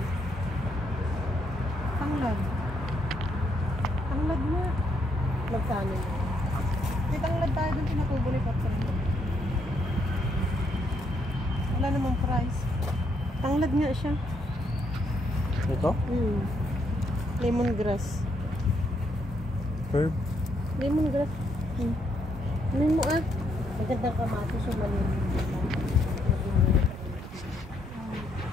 Tanglad. Tanglad nga. Magkano na? May tanglad tayo doon pinatubo ni Patron. Wala namang price. Tanglad nga siya. Ito? Lemongrass. Herb? Lemongrass. Ano mo ah? Magandang kamatis yung malinis.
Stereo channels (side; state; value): both; normal; correlation 0.75